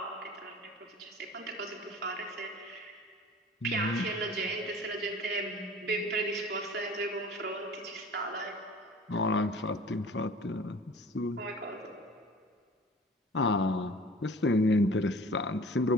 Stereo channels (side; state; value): both; normal; correlation 0.44